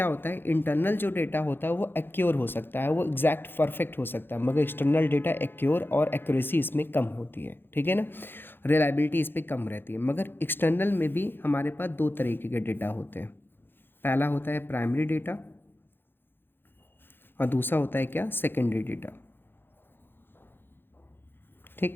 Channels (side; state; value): right; late; 0.10 ms